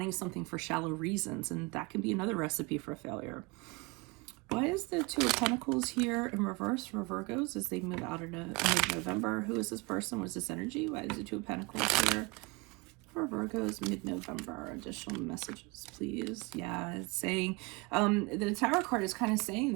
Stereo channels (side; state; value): left; quieter; 26.6 dB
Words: something for shallow reasons. And that can be another recipe for failure. Why is the Two of Pentacles here in reverse for Virgos as they move out into mid-November? Who is this person? What is this energy? Why is the Two of Pentacles here for Virgos mid-November? Additional messages, please. Yeah, it's saying, the Tower card is kind of saying